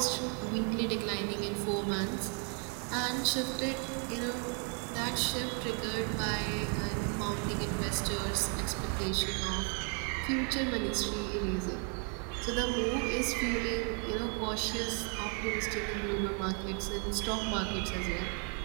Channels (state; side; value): quieter; left; 39.6 dB